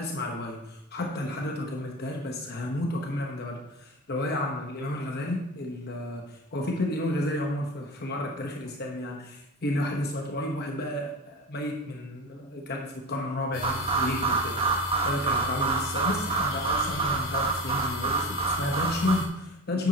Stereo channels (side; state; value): both; normal; correlation 0.29